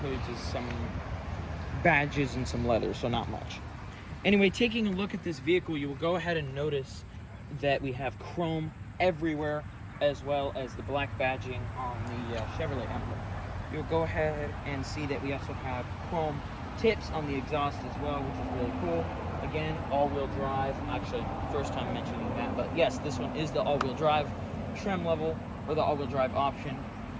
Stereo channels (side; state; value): both; identical; correlation 1.00